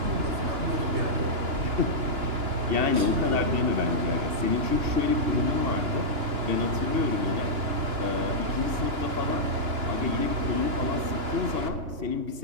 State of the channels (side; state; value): left; late; 2.9 ms